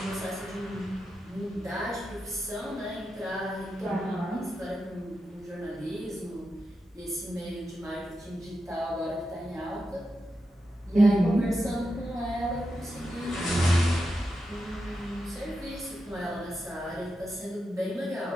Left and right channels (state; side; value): normal; both; correlation 0.88